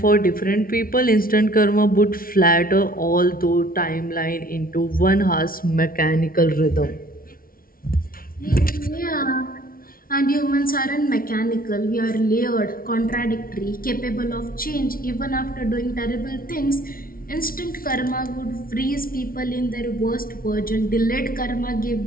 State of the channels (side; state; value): right; late; 0.43 ms